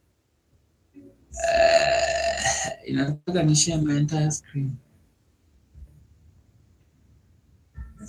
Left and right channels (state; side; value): identical; both; correlation 1.00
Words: Inataka ni share my entire screen.